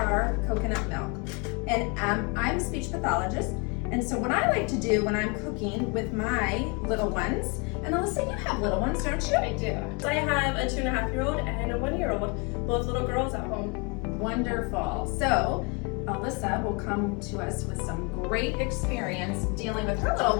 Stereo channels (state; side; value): quieter; right; 32.1 dB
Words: coconut milk, and I'm a speech pathologist, and so what I like to do when I'm cooking with my little ones, and Alyssa, you have little ones, don't you? I do. I have a 2.5-year-old and a 1-year-old, both little girls at home. Wonderful. So Alyssa will come to us with some great experience dealing with her little